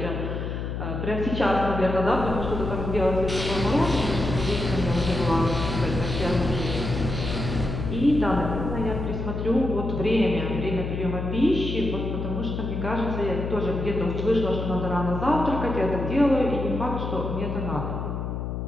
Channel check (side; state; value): left; noise; hum, 4 dB below the sound